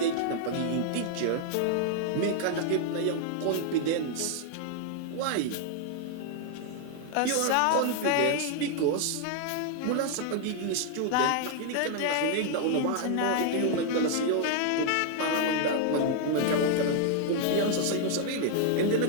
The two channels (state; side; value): different; both; correlation 0.00